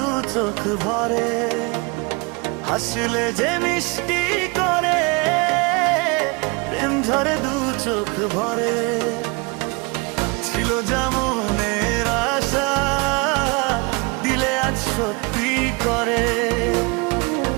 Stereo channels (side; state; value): left; quieter; 29.1 dB